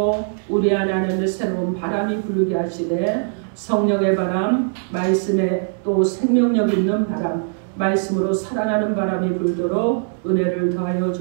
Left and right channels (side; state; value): left; silent; 65 dB below the other